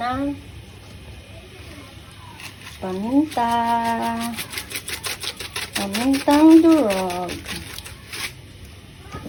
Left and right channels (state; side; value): identical; both; correlation 1.00